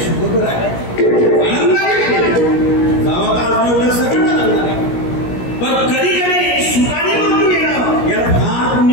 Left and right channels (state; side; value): late; right; 17 ms